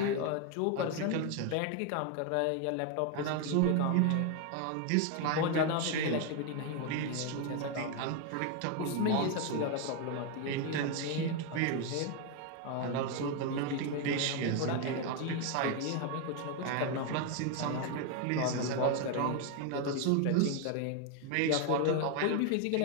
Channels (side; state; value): both; different; correlation 0.01